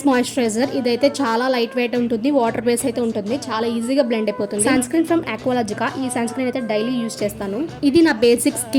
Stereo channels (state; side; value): identical; both; correlation 1.00